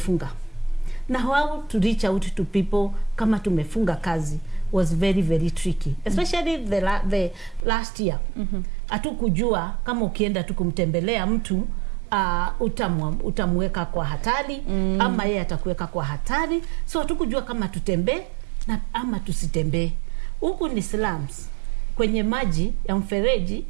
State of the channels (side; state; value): left; drops out; at 7.7 s